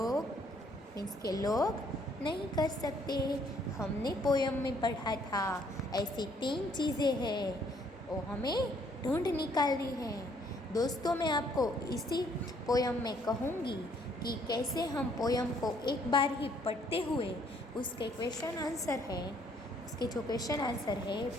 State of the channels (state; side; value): normal; both; correlation 0.65